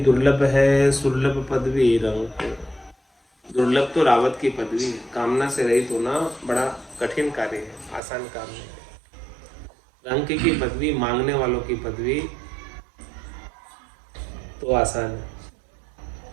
है, सुलभ पदवी रंक। दुर्लभ तो रावत की पदवी है, कामना से रहित होना बड़ा कठिन कार्य है, आसान काम नहीं है। रंक की पदवी, मांगने वालों की पदवी तो आसान है,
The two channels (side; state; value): left; drops out; at 8.0 s